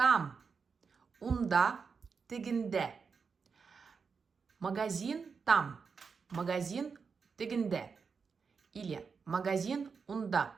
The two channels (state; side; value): quieter; left; 5.5 dB